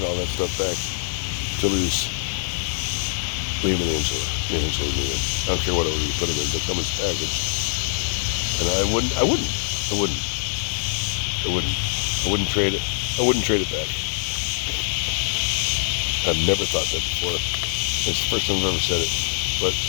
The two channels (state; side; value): silent; right; digital silence